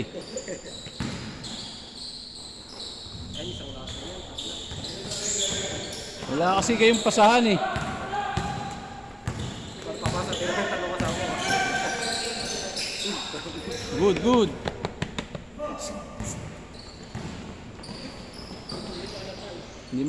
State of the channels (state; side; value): identical; both; correlation 1.00